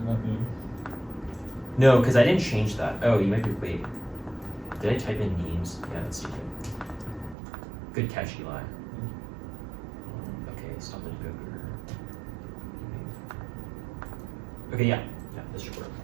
not names? No, because I didn't change that. Oh, you might be, wait. Did I type in names? Yeah, that's stupid. Good catch, Eli. Okay, stop it, Google. Okay, yeah, this should work.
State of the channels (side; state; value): left; drops out; at 7.4 s